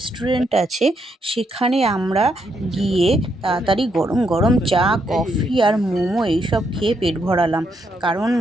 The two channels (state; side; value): normal; both; correlation 0.78